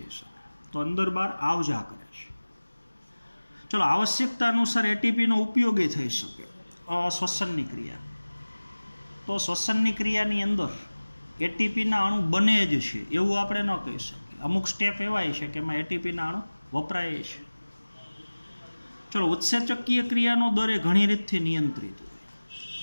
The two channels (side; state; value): both; inverted; correlation -1.00